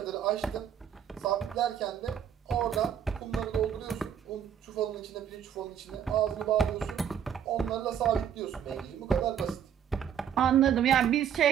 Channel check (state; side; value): quieter; left; 8.9 dB